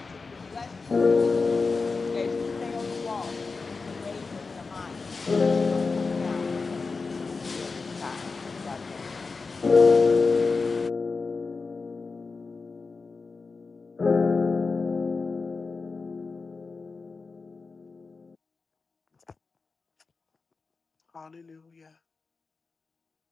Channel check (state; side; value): quieter; right; 4.3 dB